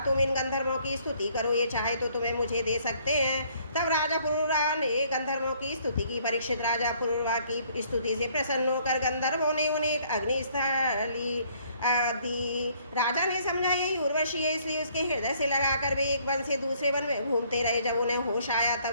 तुम इन गंधर्वों की स्तुति करो, ये चाहे तो तुम्हें मुझे दे सकते हैं। तब राजा पुरुषा ने गंधर्वों की स्तुति की। परीक्षित, राजा पुरुषा की स्तुति से प्रसन्न होकर गंधर्वों ने उन्हें एक अग्निस्थली दी। राजा ने समझा यही उर्वशी है, इसलिए उसके हृदय से लगाकर वे एक वन से दूसरे वन में घूमते रहे। जब उन्हें होश आया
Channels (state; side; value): inverted; both; correlation -0.63